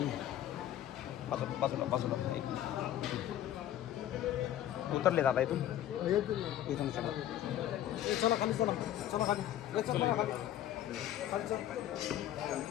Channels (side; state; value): right; quieter; 12.1 dB